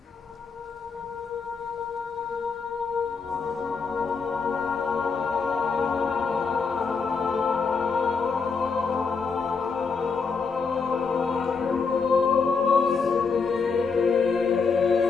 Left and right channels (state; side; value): quieter; right; 5.1 dB